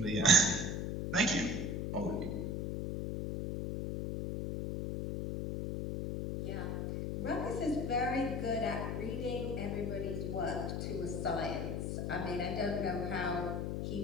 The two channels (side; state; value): left; noise; hum, 1 dB below the sound